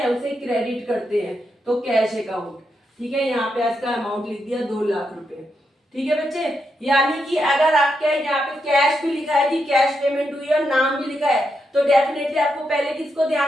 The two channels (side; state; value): both; normal; correlation 0.83